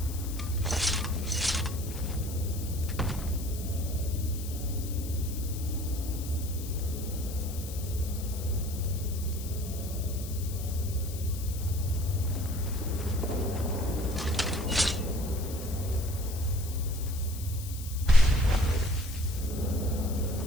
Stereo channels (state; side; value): noise; left; hiss, 12 dB below the sound